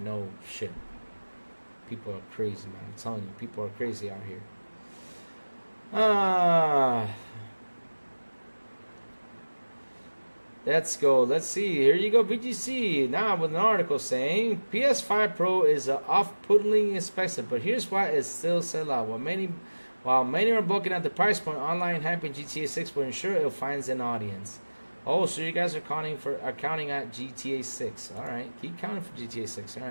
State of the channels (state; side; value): inverted; both; correlation -1.00